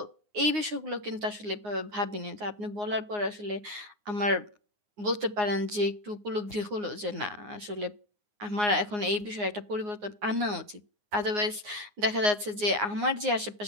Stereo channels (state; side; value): late; left; 9.6 ms